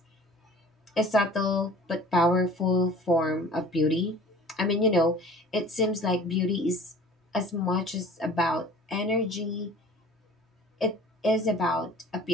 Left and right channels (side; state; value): both; normal; correlation 0.46